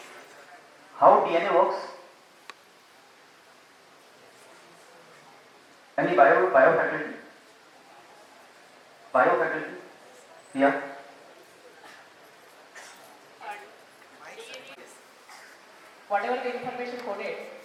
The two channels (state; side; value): identical; both; correlation 1.00